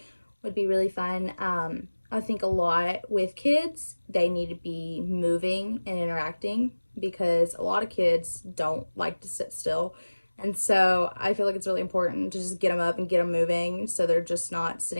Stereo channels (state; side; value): inverted; both; correlation -1.00